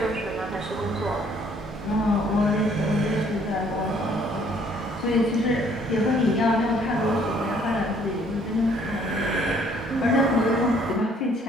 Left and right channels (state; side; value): normal; both; correlation 0.62